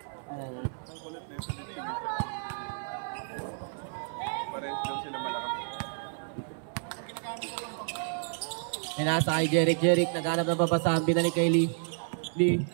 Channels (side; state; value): left; silent; 55 dB below the other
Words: Nasa kay Jeric, naghanap ng babasahan, binalik kay Lee.